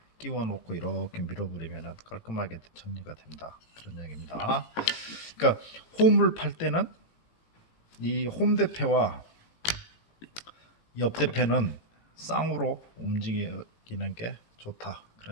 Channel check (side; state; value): right; late; 18 ms